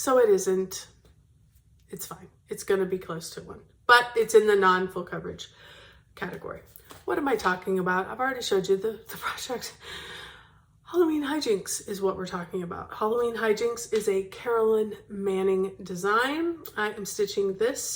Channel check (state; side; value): identical; both; correlation 1.00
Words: it isn't. It's fine. It's going to be close to one, but it's in the non-full coverage category. What am I talking about? I've already showed you the project. Halloween Hijinks is what we're talking about. Halloween Hijinks is a Carolyn Manning design. I am stitching